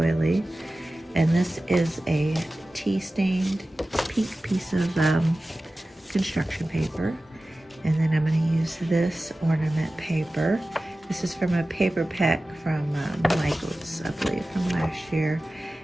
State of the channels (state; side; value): normal; both; correlation 0.96